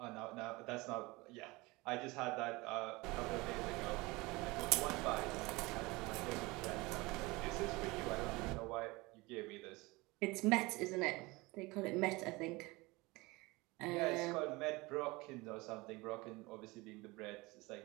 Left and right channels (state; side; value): quieter; left; 23.0 dB